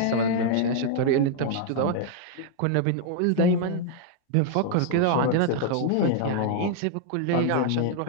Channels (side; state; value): both; different; correlation 0.00